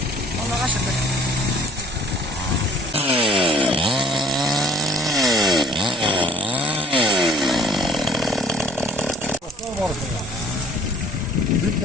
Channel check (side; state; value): both; normal; correlation 0.53